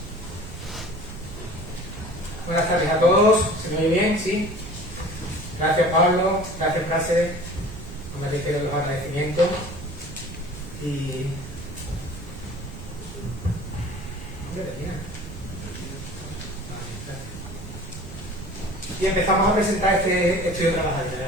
Buenas tardes a todos. ¿Se me oye bien? ¿Sí? Gracias, Pablo. Gracias, Prase. No me reitero los agradecimientos. Y empezamos a presentar este estudio trabajador, ¿de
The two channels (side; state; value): right; noise; rumble, 13 dB below the sound